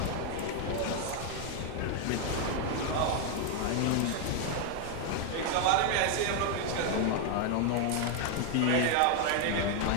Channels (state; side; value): different; both; correlation 0.01